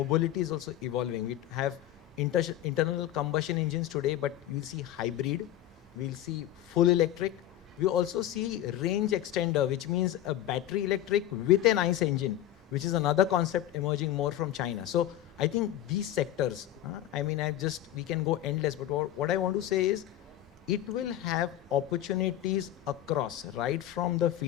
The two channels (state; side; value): quieter; right; 12.7 dB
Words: is also evolving. We have internal combustion engines today, but we'll see hybrid. We'll see full electric. We also see range extender, which means a battery electric with an ICE engine, which is another concept emerging more from China. So I think these sectors, I mean, we can go endless, but what I want to say is, it will have opportunities across, right from the